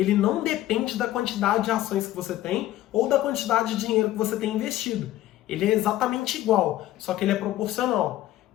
não depende da quantidade de ações que você tem ou da quantidade de dinheiro que você tem investido. Ele é exatamente igual, só que ele é proporcional.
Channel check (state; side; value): quieter; right; 14.6 dB